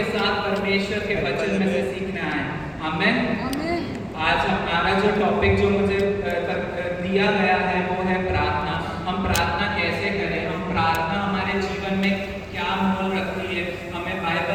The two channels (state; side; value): identical; both; correlation 1.00